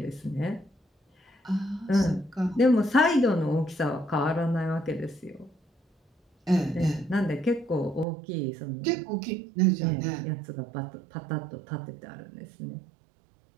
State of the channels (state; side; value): drops out; left; at 8.1 s